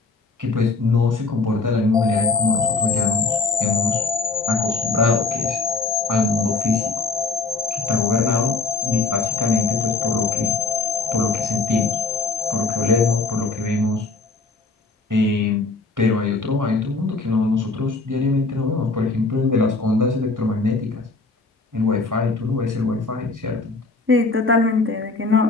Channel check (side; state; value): right; quieter; 3.8 dB